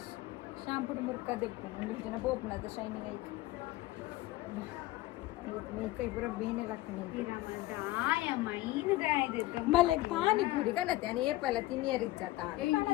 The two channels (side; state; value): right; quieter; 17.8 dB